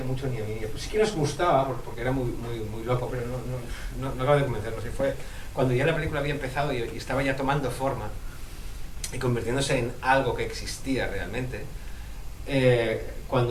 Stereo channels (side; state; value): both; identical; correlation 1.00